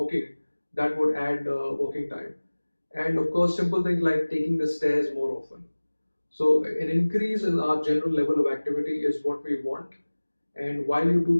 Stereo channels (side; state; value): both; inverted; correlation -1.00